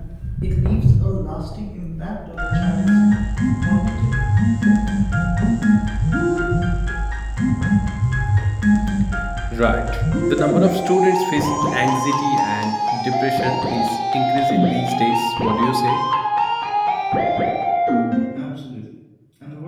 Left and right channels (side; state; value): both; identical; correlation 1.00